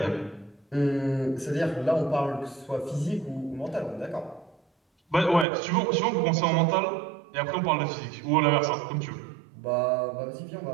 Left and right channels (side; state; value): left; drops out; at 5.5 s